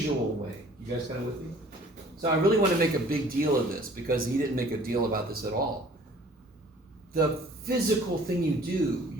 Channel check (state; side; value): normal; both; correlation 0.52